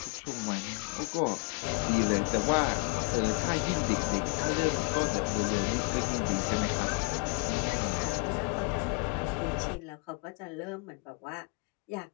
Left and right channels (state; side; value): quieter; right; 32.4 dB